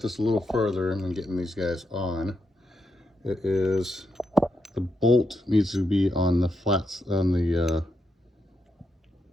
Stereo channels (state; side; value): normal; both; correlation 0.83